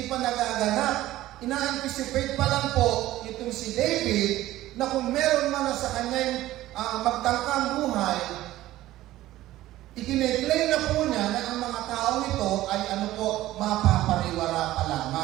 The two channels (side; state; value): left; quieter; 15.4 dB